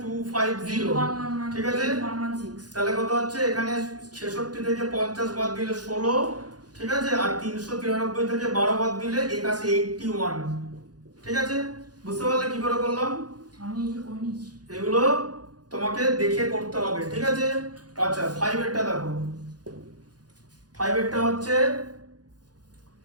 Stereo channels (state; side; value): late; left; 0.69 ms